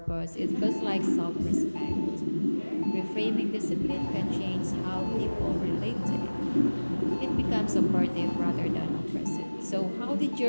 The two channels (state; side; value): inverted; both; correlation -1.00